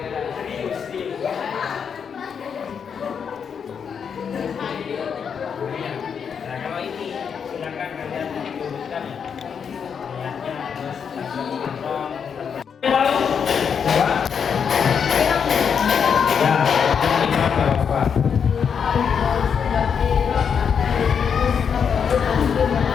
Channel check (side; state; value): right; quieter; 7.0 dB